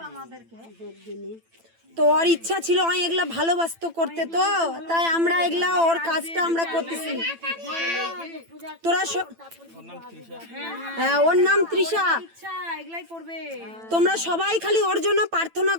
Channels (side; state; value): left; late; 9.0 ms